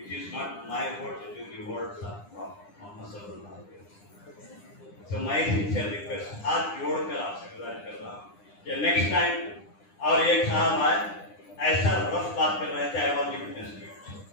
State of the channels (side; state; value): right; late; 9.9 ms